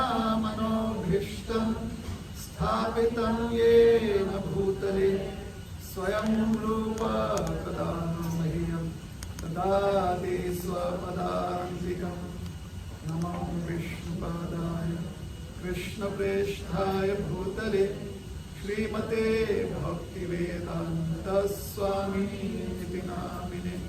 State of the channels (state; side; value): identical; both; correlation 1.00